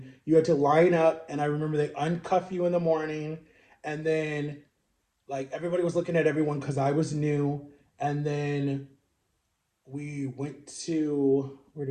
you had to line up, and I remember they uncuff you in the morning, and then like everybody was looking at everyone because I was new. And then we went to, where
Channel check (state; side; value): identical; both; correlation 1.00